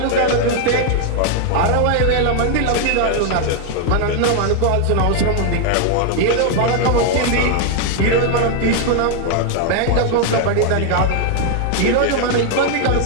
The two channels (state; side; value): different; both; correlation 0.00